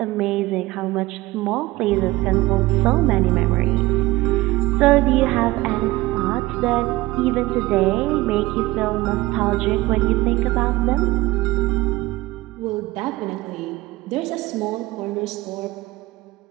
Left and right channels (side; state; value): left; quieter; 19.4 dB